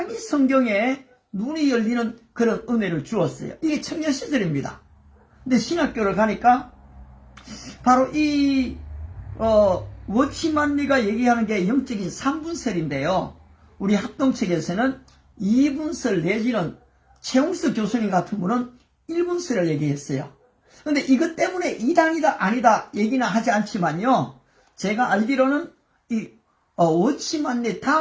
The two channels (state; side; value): identical; both; correlation 1.00